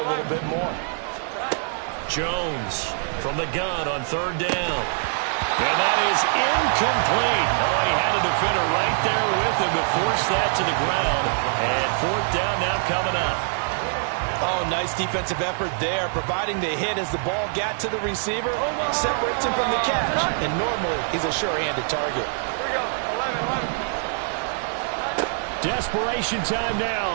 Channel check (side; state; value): left; silent; 55 dB below the other